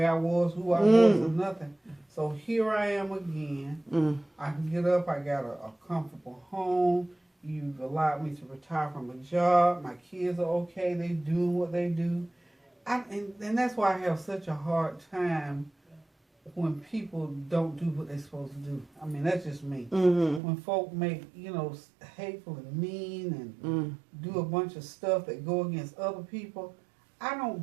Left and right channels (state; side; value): drops out; left; at 20.4 s